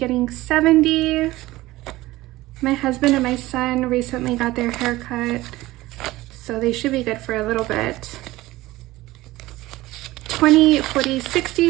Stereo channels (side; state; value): left; quieter; 18.1 dB